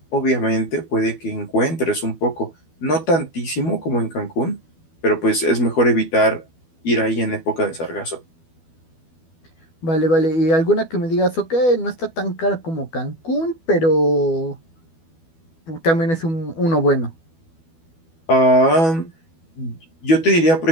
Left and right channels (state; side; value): late; right; 12 ms